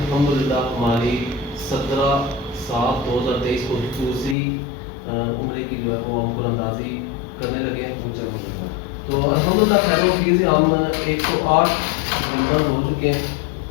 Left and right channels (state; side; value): drops out; right; at 4.4 s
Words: ہماری 17/7/2023 کو دوسری عمرے کی جو ہے وہ ہم پر اندازی کرنے لگے ہیں. تو الحمدللہ خیر و عافیت سے ہم 108 ممبر ہو چکے ہیں.